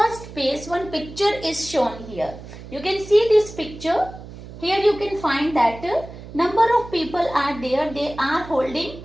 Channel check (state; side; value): noise; right; hum, 14 dB below the sound